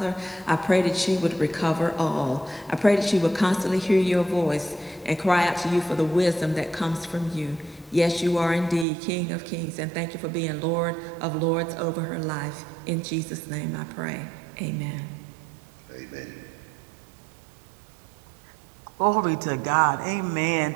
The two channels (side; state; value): left; drops out; at 8.8 s